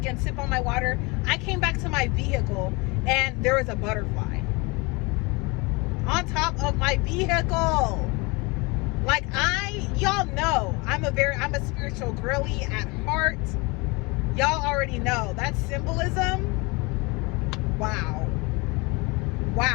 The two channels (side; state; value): right; quieter; 26.8 dB